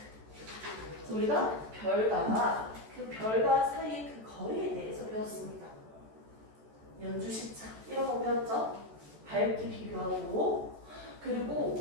그래서 우리가 별과 사이의 그 거리에 대해서 배웠습니다. 연주 시차 이런 거 배웠죠. 밝기 비교하고. 그리고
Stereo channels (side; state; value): left; late; 14 ms